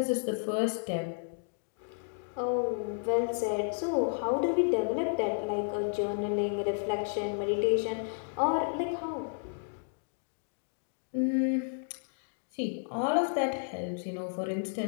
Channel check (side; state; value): right; silent; digital silence